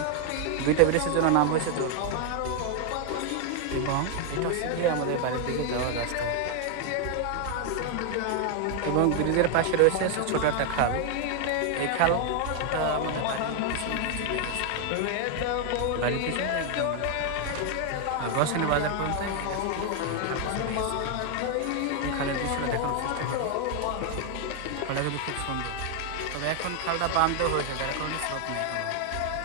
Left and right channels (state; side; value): different; both; correlation 0.00